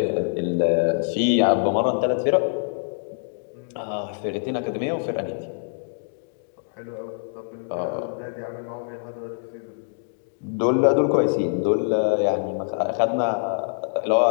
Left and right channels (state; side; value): silent; right; digital silence